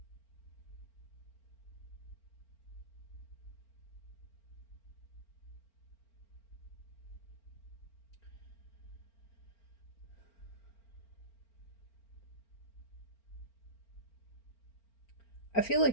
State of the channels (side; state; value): right; late; 4.4 ms